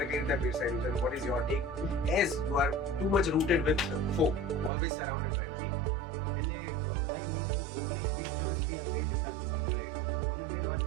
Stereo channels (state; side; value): drops out; left; at 4.7 s